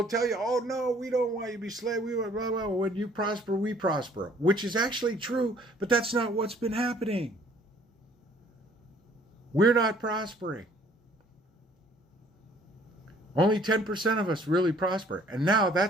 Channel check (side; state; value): both; normal; correlation 0.58